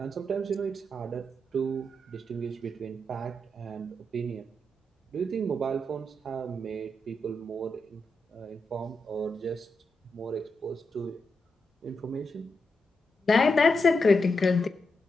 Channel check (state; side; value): normal; both; correlation 0.85